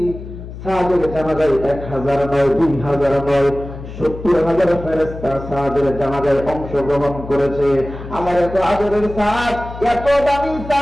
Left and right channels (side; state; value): left; noise; hum, 12 dB below the sound